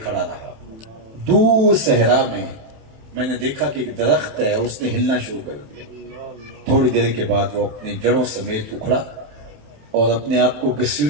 کھڑا رہا۔ دور صحرا میں نے دیکھا کہ ایک درخت ہے، اس نے ہلنا شروع کر دیا۔ تھوڑی دیر کے بعد وہ اپنی جڑوں سمیت اکھڑا اور اپنے آپ کو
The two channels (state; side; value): late; left; 27 ms